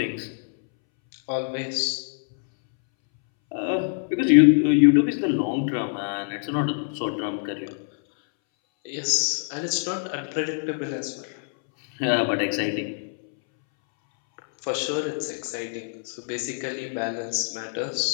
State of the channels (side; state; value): right; silent; 62 dB below the other